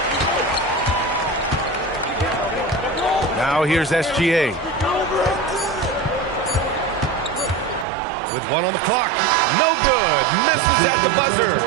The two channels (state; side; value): drops out; left; at 7.9 s